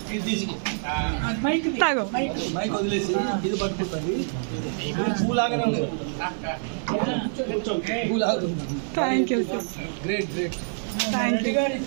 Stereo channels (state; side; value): silent; left; 58 dB below the other